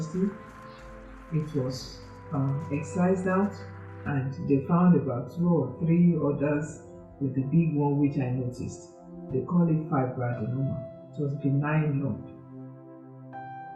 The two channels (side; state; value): both; identical; correlation 1.00